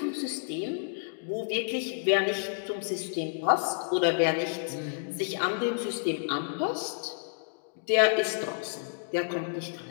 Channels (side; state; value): right; silent; digital silence